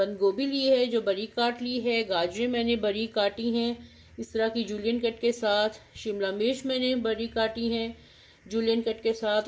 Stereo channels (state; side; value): identical; both; correlation 1.00